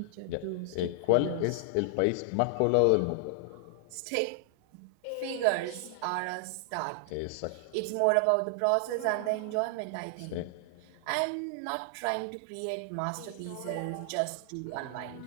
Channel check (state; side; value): different; both; correlation 0.00